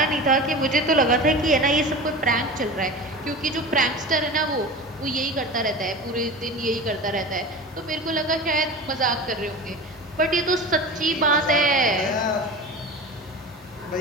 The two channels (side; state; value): both; normal; correlation 0.31